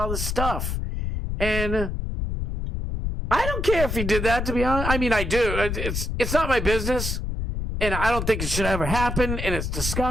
this stuff. And I don't care if he did that, to be honest. I mean, I do. It's not my business. And I don't think it should ever happen. And it's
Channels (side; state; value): left; noise; rumble, 3 dB below the sound